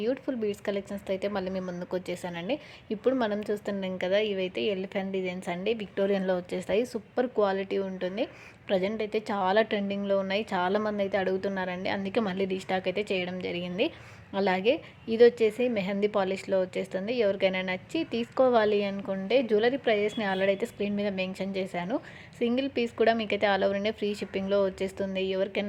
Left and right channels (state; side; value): identical; both; correlation 1.00